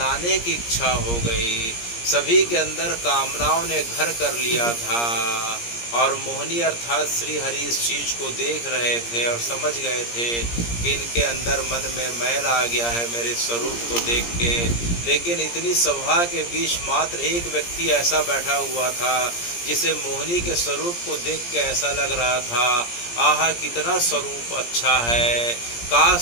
की इच्छा हो गई। सभी के अंदर कामनाओं ने घर कर लिया था, और मोहिनी अर्थात श्री हरि इस चीज़ को देख रहे थे और समझ गए थे कि इनके अंदर मन में मैल आ गया है मेरे स्वरूप को देख के। लेकिन इतनी सभा के बीच मात्र एक व्यक्ति ऐसा बैठा हुआ था जिसे मोहिनी के स्वरूप को देख के ऐसा लग रहा था, आहा कितना स्वरूप अच्छा है,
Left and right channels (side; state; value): right; late; 17 ms